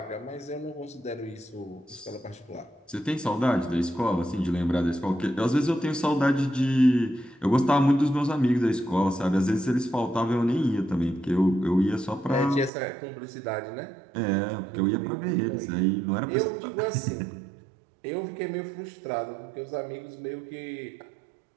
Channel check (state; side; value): drops out; left; at 12.7 s